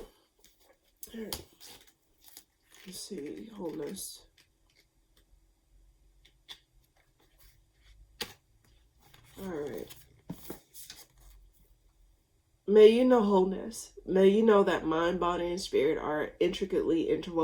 Alright. Let's see. Wholeness. Alright. May you know wholeness. May you know that mind, body, and spirit are intricately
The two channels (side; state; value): both; identical; correlation 1.00